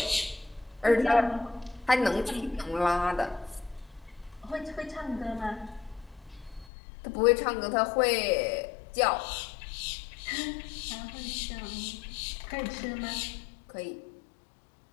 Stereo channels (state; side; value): drops out; right; at 6.7 s